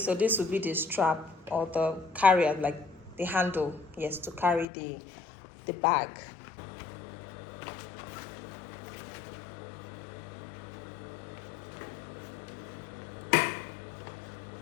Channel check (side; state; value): right; drops out; at 4.7 s